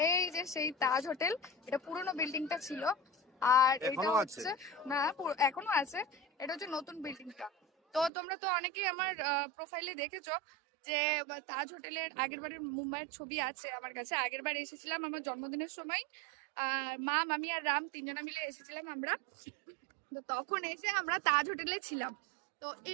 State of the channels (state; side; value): drops out; left; at 8.1 s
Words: এই যে সেই তাজ হোটেল। এটা পুরোনো বিল্ডিংটা ছিল, আর এটা এখনো আছে? হচ্ছে না, এখনো আছে। এটা হচ্ছে নতুন বিল্ডিংটা। তো তোমরা তো অনেকেই আমার প্রোফাইলে দেখেছো যে তাজ হোটেলের আগের বারের মুম্বাইয়ের ছবি আছে আমার কাছে। আগের বার এসেছিলাম আমার জন্মদিনের সময়, মা, মামি আর রাম তিনজনা মিলে এসেছিলাম আমরা। তো তখন এসে আমরা তাজ হোটেলে ছিলাম। তো